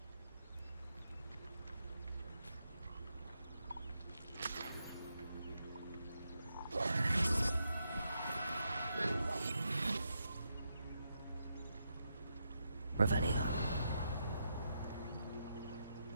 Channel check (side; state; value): both; inverted; correlation -0.83